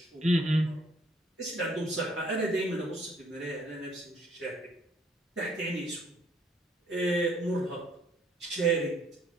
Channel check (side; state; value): both; normal; correlation 0.64